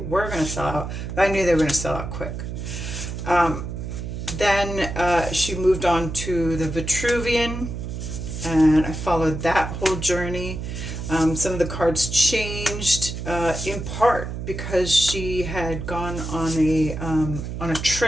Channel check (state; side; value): noise; right; hum, 6 dB below the sound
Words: going to sell out, but I knew they were going to sell out quick. Then she moved on to the Vitruvian, and I followed that whole journey. Some of the cards changed in part because she had gone on a